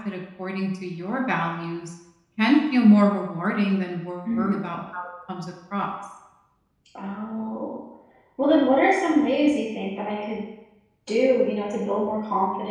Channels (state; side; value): identical; both; correlation 1.00